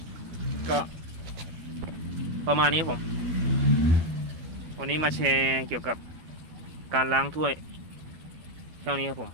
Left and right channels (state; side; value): late; left; 12 ms